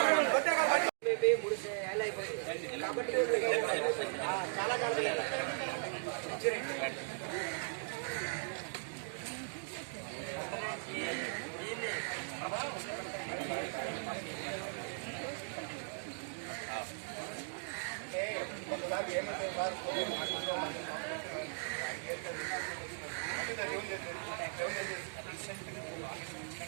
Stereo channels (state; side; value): silent; left; digital silence